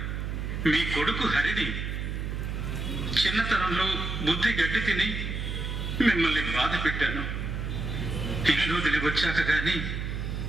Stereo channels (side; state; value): right; noise; hum, 3 dB below the sound